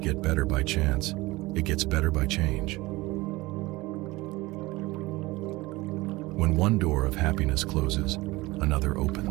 get better by chance, it gets better by change. When one door of happiness closes, another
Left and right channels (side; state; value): left; quieter; 20.8 dB